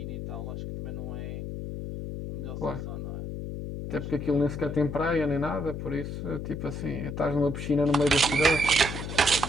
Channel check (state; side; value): noise; left; hum, 6 dB below the sound